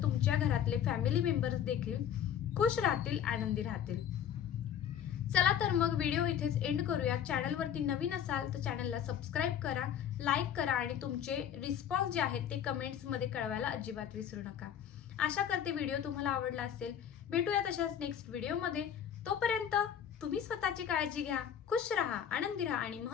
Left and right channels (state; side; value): quieter; right; 9.2 dB